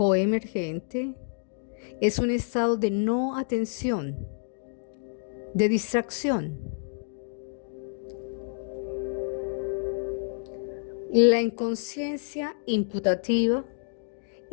es un estado de no atención, de distracción. La inconsciencia imputativa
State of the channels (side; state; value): right; silent; digital silence